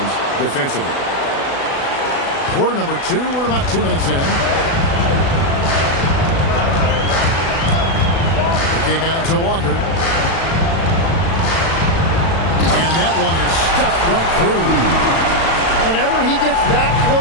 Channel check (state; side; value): late; right; 36 ms